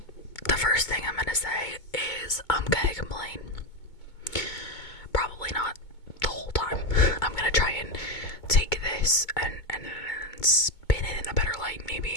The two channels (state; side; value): late; right; 2.2 ms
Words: The first thing I'm gonna say is I'm gonna complain. Probably not the whole time. I'm gonna try and take this and spin it in a better light,